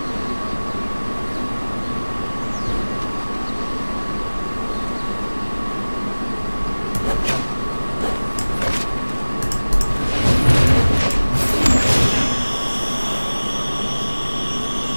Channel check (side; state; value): both; inverted; correlation -1.00